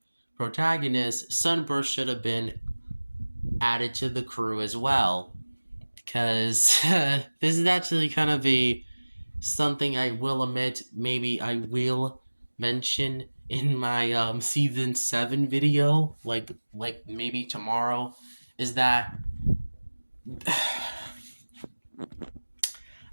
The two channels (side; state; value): both; inverted; correlation -1.00